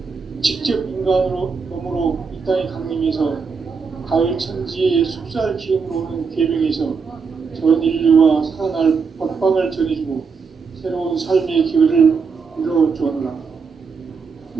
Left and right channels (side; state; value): left; quieter; 5.3 dB